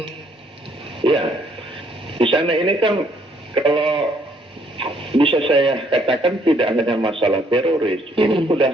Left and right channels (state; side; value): normal; both; correlation 0.66